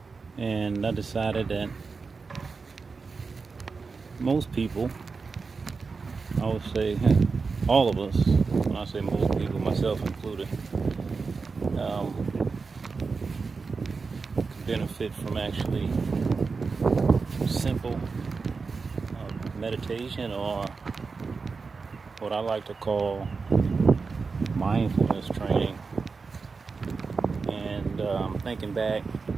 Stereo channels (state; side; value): quieter; left; 4.6 dB